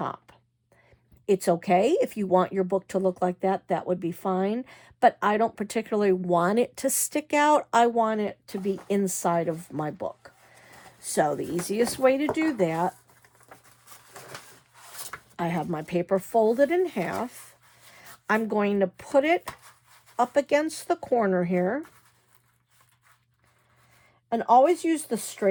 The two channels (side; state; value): both; identical; correlation 1.00